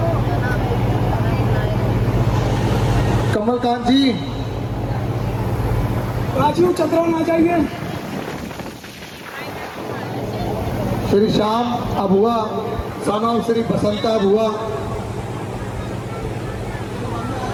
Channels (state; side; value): identical; both; correlation 1.00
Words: Kamalkant ji, Rajiv Chandran आ जाइए। Shri Shyam Abua, son of Shri Basanta Abua.